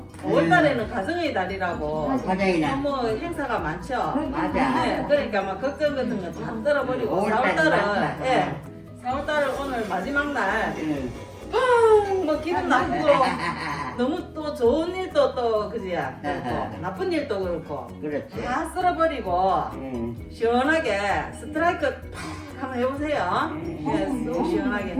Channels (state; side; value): identical; both; correlation 1.00